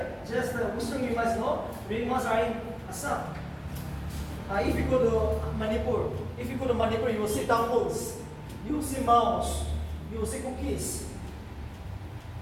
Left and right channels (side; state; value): both; identical; correlation 1.00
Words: Just the Western you must know, Ringmas are in Assam. If you go to Manipur, you will see temples, you will see mouse, you will see cookies.